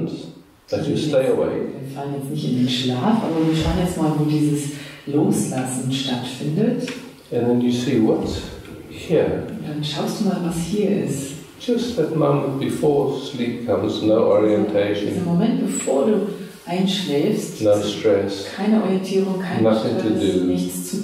that you stay awake. Wir fallen jetzt nicht in den Schlaf, aber wir schauen jetzt mal, wo dieses Loslassen stattfindet. And then you see what's here. Und dann schaust du mal, was hier ist. Just that moment before sleep comes, no orientation. Dieser Moment, bevor du einschläfst, no stress, keine Orientierung, kein nothing Stress, to do. Nichts zu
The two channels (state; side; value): identical; both; correlation 1.00